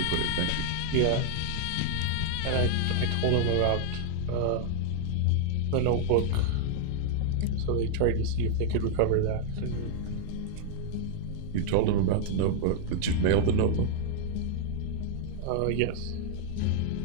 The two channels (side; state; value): both; different; correlation -0.01